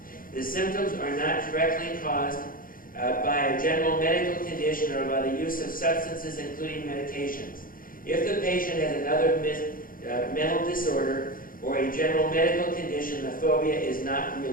The symptoms are not directly caused by a general medical condition or by the use of substances, including medications. If the patient has another mental disorder or a general medical condition, the phobia is not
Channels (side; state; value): right; late; 0.41 ms